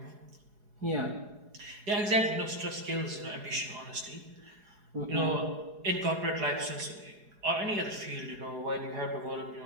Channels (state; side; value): late; left; 4.8 ms